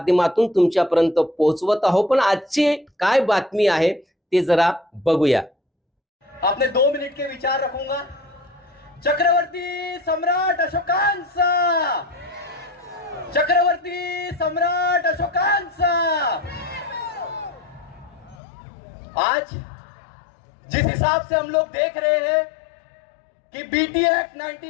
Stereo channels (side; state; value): right; drops out; at 18.4 s